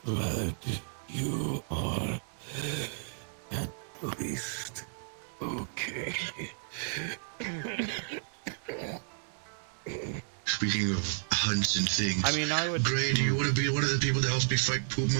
Glad you are at least okay. Speaking of hunts and things. I mean, I would. Gray, do you want to be one of the people that helps me fight poop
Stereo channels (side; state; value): left; silent; digital silence